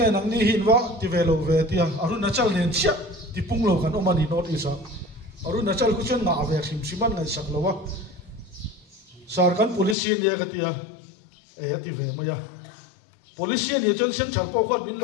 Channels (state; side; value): drops out; right; at 10.0 s